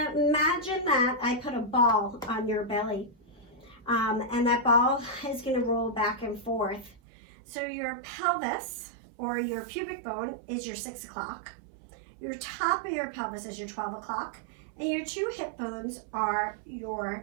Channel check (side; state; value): left; drops out; at 7.0 s